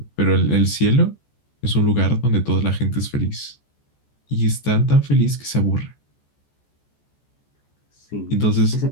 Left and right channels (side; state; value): right; late; 14 ms